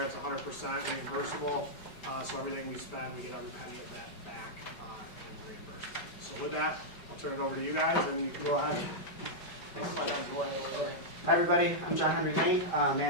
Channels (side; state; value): right; late; 5.1 ms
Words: It's 100% reimbursable. So everything we spend, we get every penny of that back and reimbursement. So with that, I'll turn it over to you guys, and you can go ahead. Hi everybody, I'm John Henry Lane,